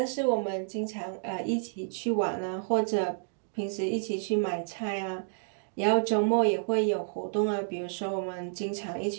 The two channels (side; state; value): left; silent; digital silence